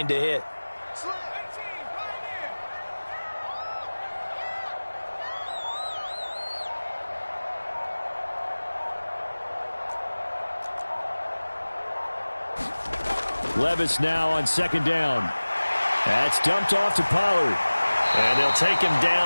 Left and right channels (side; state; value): both; inverted; correlation -1.00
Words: to hit. Levis now on 2nd down. That's dumped off to Pollard. And they'll take him